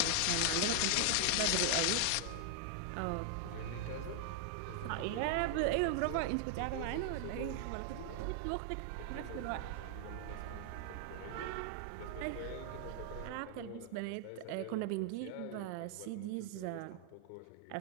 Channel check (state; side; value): different; both; correlation 0.00